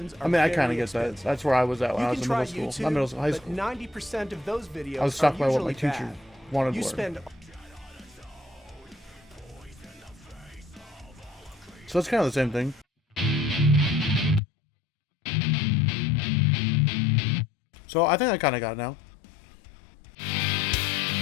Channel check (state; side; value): drops out; right; at 14.4 s